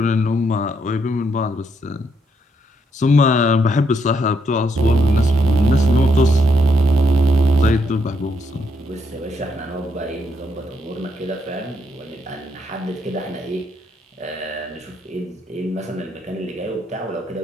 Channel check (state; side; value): normal; both; correlation 0.76